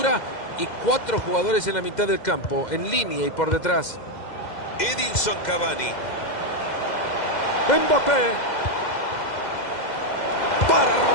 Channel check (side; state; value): right; late; 2.1 ms